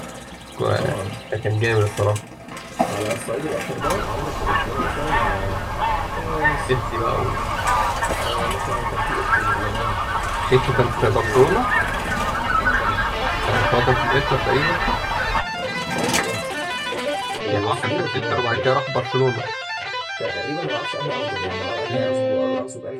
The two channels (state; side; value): identical; both; correlation 1.00